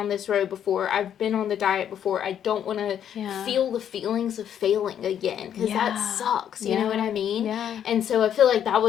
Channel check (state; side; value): quieter; right; 9.5 dB